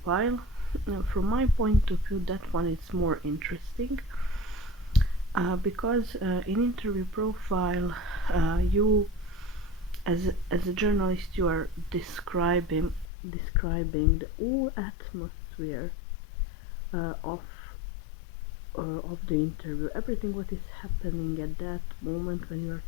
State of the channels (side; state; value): right; drops out; at 13.1 s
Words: from my point of view, that one is more interesting because in interview profile, you as a journalist, you are describing the whole atmosphere of the interview, everything what is happening at that moment when you are